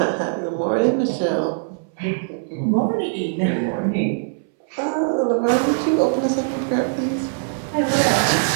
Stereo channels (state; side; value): silent; left; 65 dB below the other